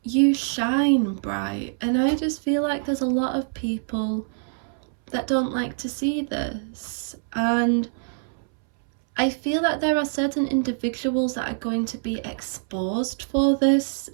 You shine bright, and I just feel like there's a lot of people that don't like to see this, and I feel that there are certain individuals that are going to be exposed for this.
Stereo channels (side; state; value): left; silent; 62 dB below the other